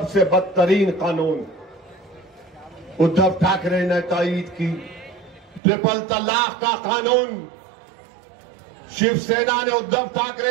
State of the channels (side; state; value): left; drops out; at 5.6 s